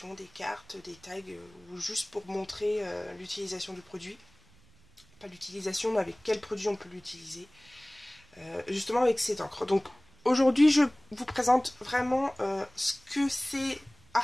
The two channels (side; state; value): right; noise; rumble, 28 dB below the sound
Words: des cartes, des tags, ou juste pour montrer l'utilisation du produit. Pas l'utilisation, mais avec quel produit on peut l'utiliser. Justement avec cette encre. Donc aujourd'hui, je vous présente vraiment ce que c'est